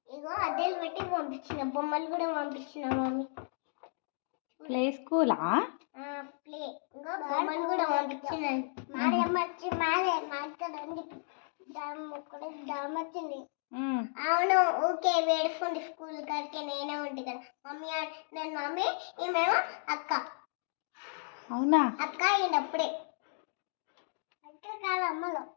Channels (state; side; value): silent; right; digital silence